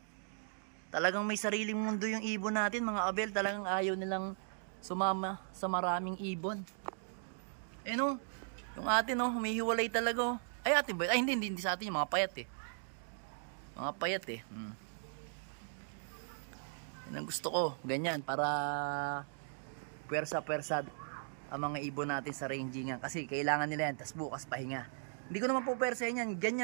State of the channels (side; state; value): left; silent; digital silence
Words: Talagang may sariling mundo yung ibon natin mga Abel. Talagang ayaw nilang sumama sa maraming ibon. Eh no, yung atin oh, humihiwalay talaga oh. Ay atin ba? Ay hindi sa atin yung mga payat eh. Mga payat eh. Yan ang gusto ko, ganyan para pwersa-pwersa ang mga ibon natin sa rangingan kasi kailangan nila yan, tas bukas pahinga. Hindi ko naman po pwersahin yan,